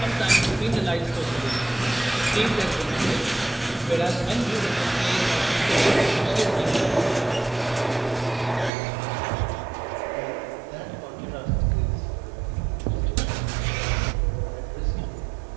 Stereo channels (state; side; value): drops out; left; at 8.7 s